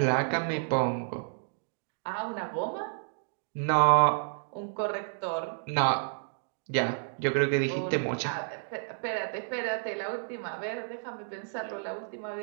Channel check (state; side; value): silent; left; digital silence